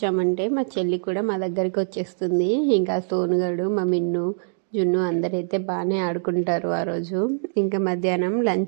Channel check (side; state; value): left; silent; digital silence